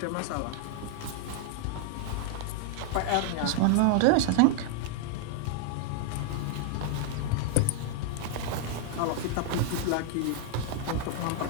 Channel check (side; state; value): both; different; correlation 0.00